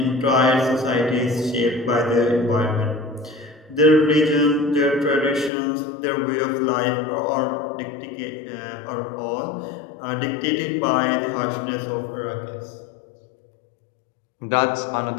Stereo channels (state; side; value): drops out; right; at 5.5 s